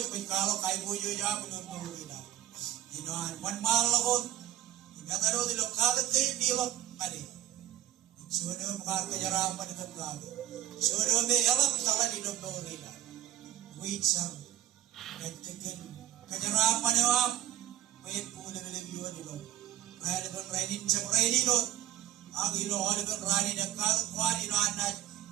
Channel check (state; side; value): quieter; left; 12.7 dB